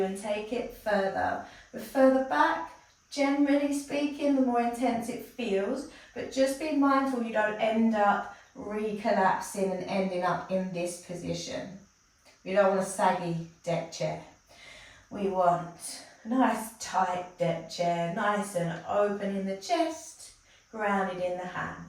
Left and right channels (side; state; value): both; identical; correlation 1.00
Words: and take it further. The further back, generally speaking, the more intense it feels, but just be mindful you don't end up recollapsing and ending up in this position. We don't want a saggy deck chair. We want a nice tight deck chair, nice and open in the chest, grounded in the